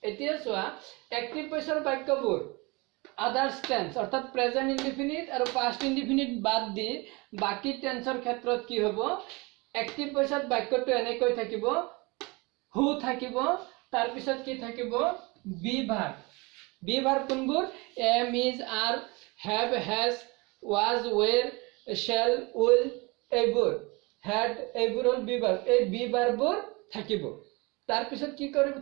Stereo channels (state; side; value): quieter; left; 26.3 dB